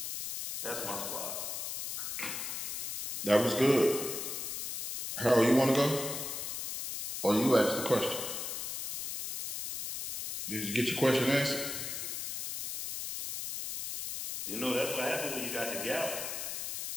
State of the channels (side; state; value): left; noise; hiss, 5 dB below the sound